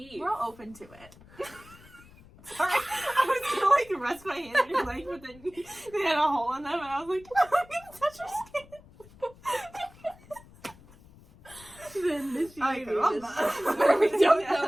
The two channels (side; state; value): left; noise; rumble, 23 dB below the sound